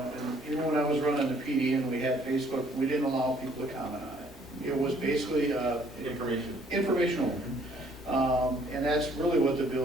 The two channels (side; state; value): both; normal; correlation 0.62